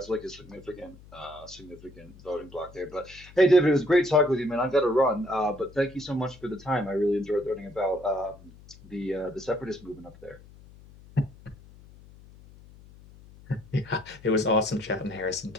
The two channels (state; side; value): noise; left; hum, 22 dB below the sound